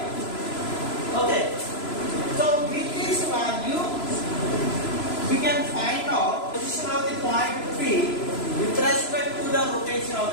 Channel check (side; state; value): right; late; 3.0 ms